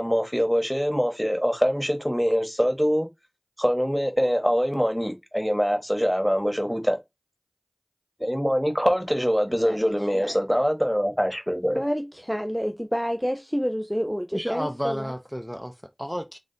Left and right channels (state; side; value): identical; both; correlation 1.00